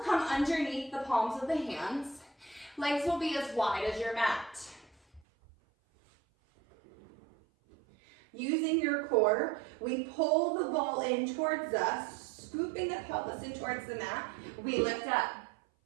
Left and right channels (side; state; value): left; drops out; at 5.2 s